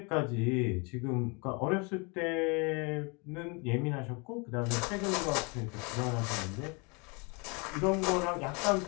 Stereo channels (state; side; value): quieter; right; 31.0 dB